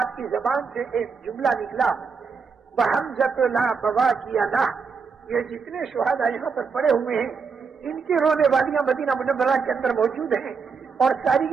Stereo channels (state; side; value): quieter; left; 5.4 dB